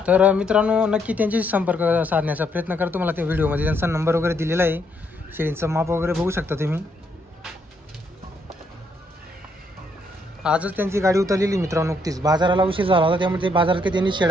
तर मित्रांनो नक्की त्यांच्याशी संपर्क साधण्याचा प्रयत्न करा. तुम्हाला त्या व्हिडिओमध्ये त्यांचा नंबर वगैरे दिलेला आहे. शेळींचं माप वगैरे बघू शकता तुम्ही. आजच त्यांची गाडी उतरलेली मित्रांनो. नुकतीच बाजाराला उशीर झाला होता त्यामुळे ते बाजारात काही त्यांनी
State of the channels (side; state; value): both; normal; correlation 0.73